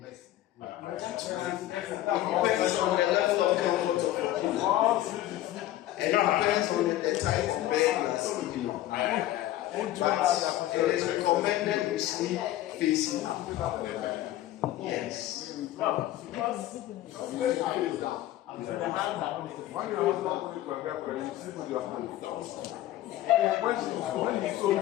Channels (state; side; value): quieter; right; 14.3 dB